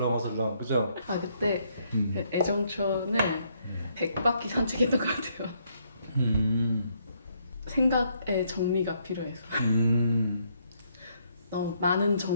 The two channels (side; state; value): both; inverted; correlation -0.72